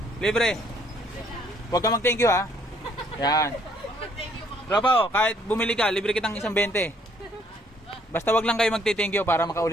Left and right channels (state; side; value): normal; both; correlation 0.65